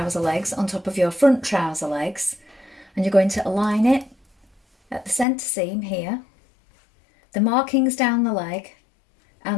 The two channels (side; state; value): right; drops out; at 5.2 s